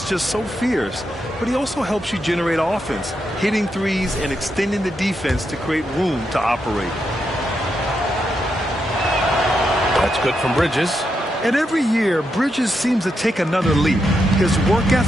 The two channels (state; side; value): normal; both; correlation 0.83